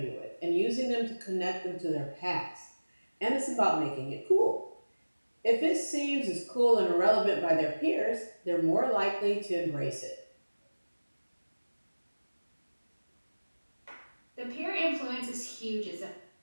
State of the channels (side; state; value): both; inverted; correlation -1.00